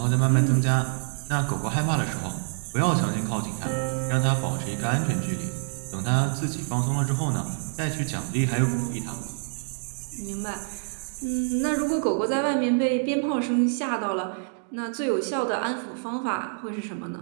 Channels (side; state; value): left; silent; digital silence